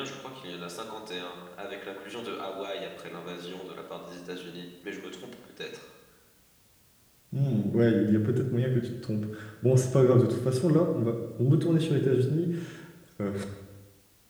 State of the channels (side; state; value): both; identical; correlation 1.00